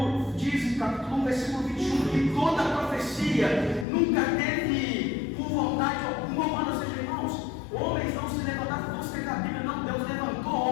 diz, em capítulo 1, versículo 21, que toda profecia nunca teve por vontade alguma humana. Ou seja, irmãos, homens não se levantaram por você da Bíblia, não. Deus levantou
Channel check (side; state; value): right; drops out; at 3.9 s